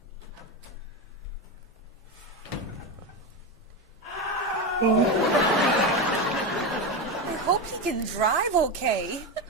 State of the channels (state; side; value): normal; both; correlation 0.15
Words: I hope he can drive okay.